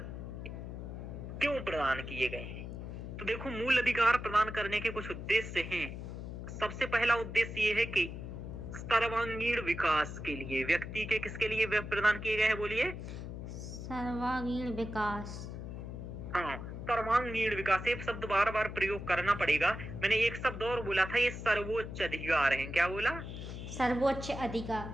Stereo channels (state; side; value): noise; left; hum, 8 dB below the sound